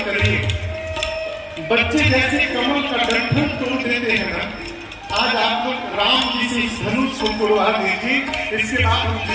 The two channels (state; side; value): identical; both; correlation 1.00